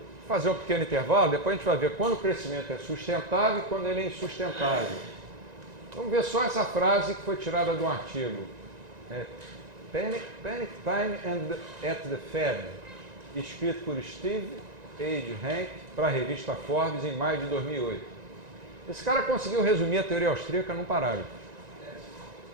fazer um pequeno intervalo, depois a gente vai ver quando o crescimento é sustentável e quando ele é insustentável. Vamos ver só essa frase que foi tirada de um artigo. Panic Time at the Fed, escrito por Steve Hanke para a revista Forbes em maio de 2008. Esse cara conseguiu resumir a teoria austríaca num parágrafo.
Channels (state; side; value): late; left; 1.9 ms